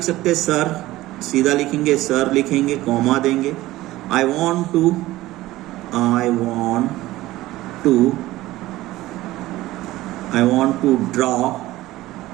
सकते हैं सर, सीधा लिखेंगे सर, लिखेंगे, कॉमा देंगे। I want to draw,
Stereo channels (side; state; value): left; quieter; 16.9 dB